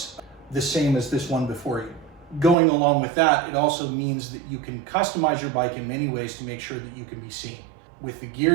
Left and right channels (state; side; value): drops out; left; at 2.6 s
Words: the same as this one before you. Going along with that, it also means that you can customize your bike in many ways to make sure that you can be seen. With the